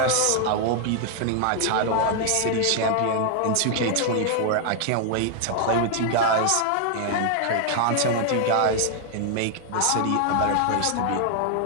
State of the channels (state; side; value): different; both; correlation 0.00